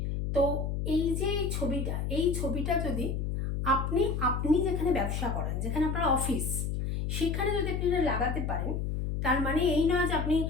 তো এই যে এই ছবিটা যদি আপনি আপনি যেখানে ব্যবসা করেন, যেখানে আপনার অফিস, সেখানে যদি আপনি এটা লাগাতে পারেন, তার মানে এই নয় যে আপনি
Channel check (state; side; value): noise; left; hum, 1 dB below the sound